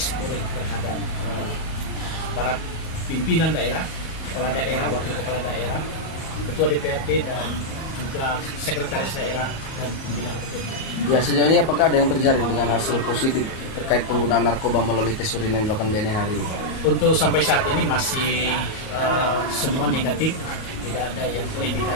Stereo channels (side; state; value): right; late; 37 ms